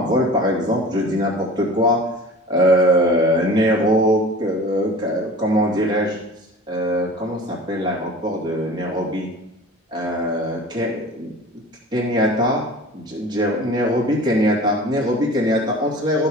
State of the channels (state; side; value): normal; both; correlation 0.40